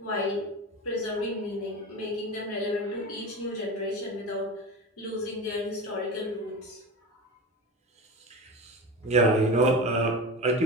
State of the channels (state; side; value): normal; both; correlation 0.27